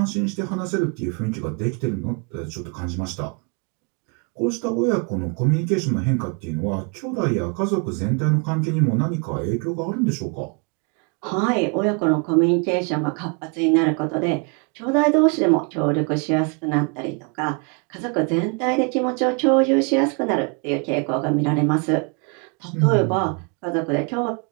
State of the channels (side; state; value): left; quieter; 34.8 dB